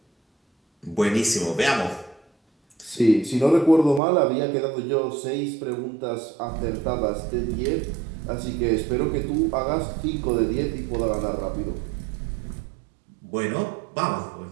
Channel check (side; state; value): left; drops out; at 4.0 s